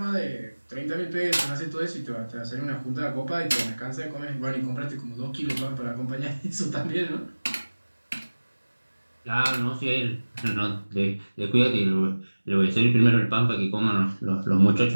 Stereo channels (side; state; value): both; inverted; correlation -1.00